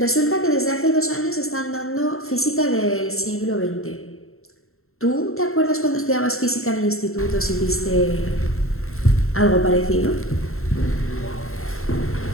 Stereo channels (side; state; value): right; late; 0.62 ms